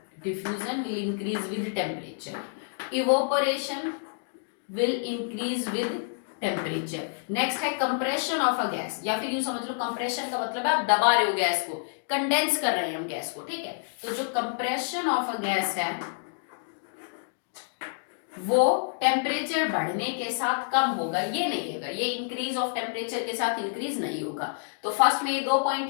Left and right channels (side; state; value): right; silent; digital silence